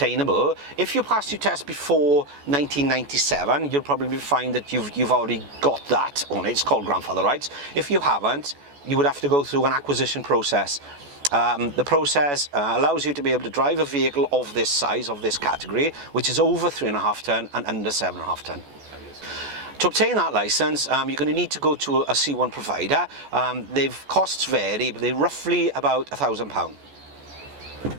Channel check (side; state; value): left; late; 14 ms